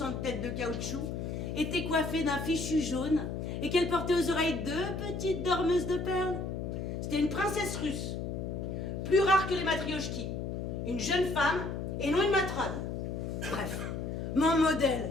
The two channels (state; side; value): noise; left; hum, 4 dB below the sound